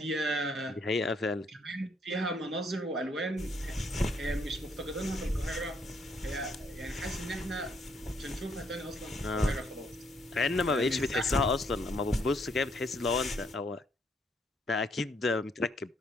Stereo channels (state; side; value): normal; both; correlation 0.70